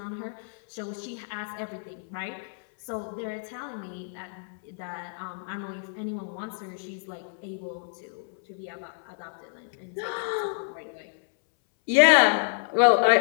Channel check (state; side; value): silent; right; 59 dB below the other